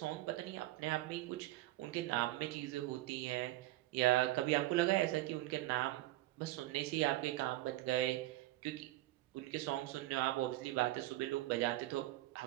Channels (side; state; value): left; quieter; 16.8 dB